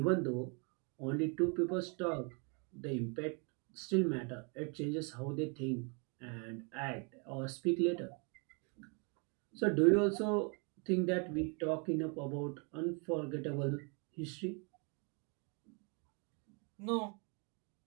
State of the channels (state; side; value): quieter; left; 35.0 dB